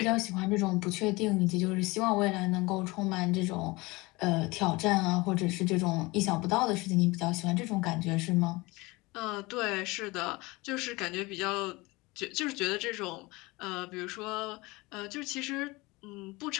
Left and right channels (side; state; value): right; quieter; 23.1 dB